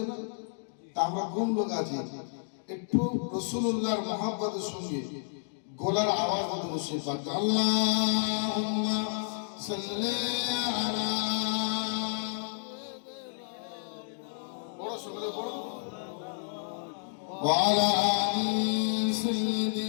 না তা আমরা কোন লোক আছি একটু রাসূলুল্লাহর মহব্বতের সঙ্গে গলার আওয়াজ মতো বসে পাক আল্লাহুম্মা সাল্লি আলা বড় সঙ্গে বড় ওয়া আলা আলি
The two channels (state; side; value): silent; right; digital silence